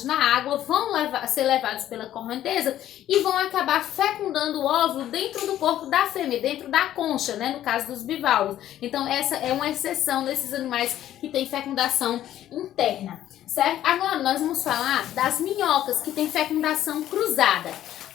na água, ser levados pela correnteza e vão acabar fecundando o óvulo dentro do corpo da fêmea, dentro da concha, né, no caso dos bivalves. Então essa é uma exceção desses animais que têm fecundação interna, certo? Agora nós vamos falar das minhocas, que têm fecundação cruzada.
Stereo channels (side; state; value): right; quieter; 12.3 dB